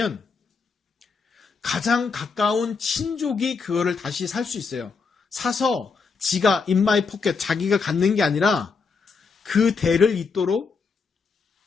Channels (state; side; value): quieter; right; 5.0 dB